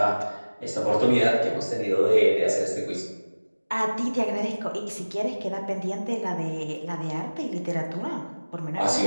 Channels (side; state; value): both; inverted; correlation -1.00